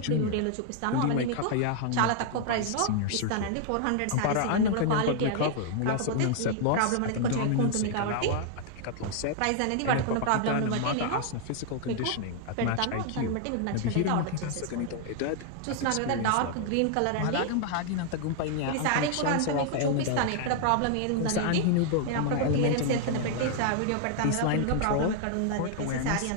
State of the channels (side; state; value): both; different; correlation 0.00